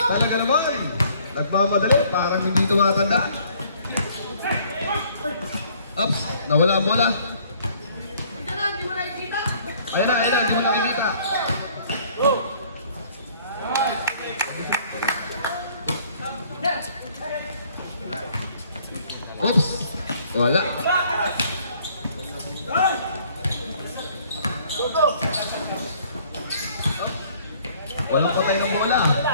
Talaga naman. Nagmamadali. Parang hindi tumatanda. Ups. Nawala ang bola. Ayan na, hindi mo nakikita. Oops. Wala. Walang patay ng bola.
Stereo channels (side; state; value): both; inverted; correlation -0.59